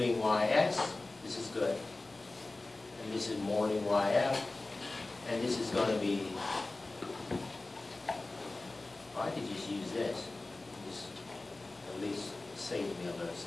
YS, this is good. And this is molding YF, and this is going to be, I could just use this. Just at least save me a little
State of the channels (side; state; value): right; quieter; 3.1 dB